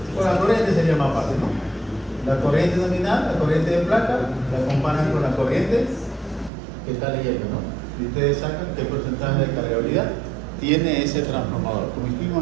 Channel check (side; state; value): left; drops out; at 6.5 s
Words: Con la corriente sería más fácil, ¿no? La corriente nominal, la corriente de placa, la comparan con la corriente que está leyendo, ¿no? Y ustedes sacan qué porcentaje de cargabilidad tiene ese transformador, como